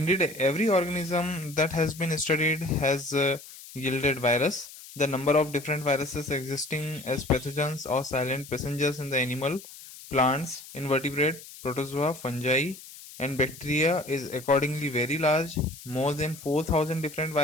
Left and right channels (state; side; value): noise; left; hiss, 17 dB below the sound